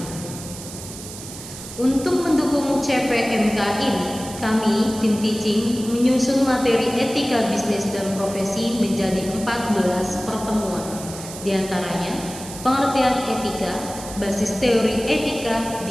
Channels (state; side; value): noise; right; hiss, 12 dB below the sound